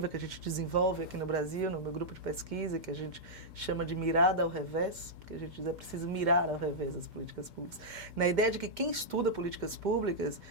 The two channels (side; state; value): left; late; 2.1 ms